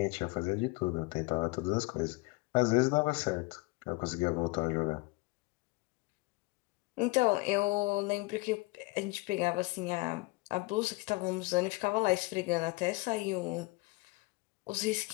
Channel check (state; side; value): quieter; right; 24.7 dB